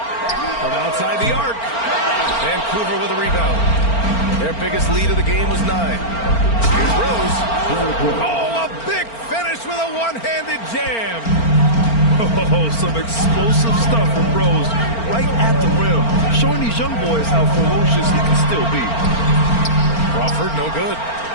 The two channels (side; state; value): right; late; 4.4 ms